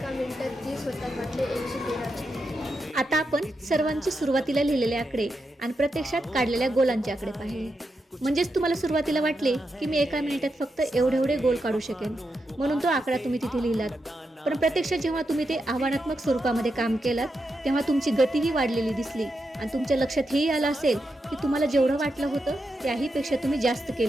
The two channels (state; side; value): normal; both; correlation 0.86